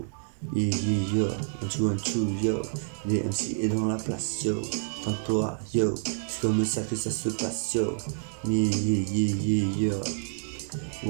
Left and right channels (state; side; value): silent; left; 59 dB below the other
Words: Yeah, yeah, yo. 1, 2, 1, 2, yo. Les MC est dans la place, yo. En train de pleurer, yo. C'est comme ça que ça se passe, yo. Yeah, yeah, yeah, yeah,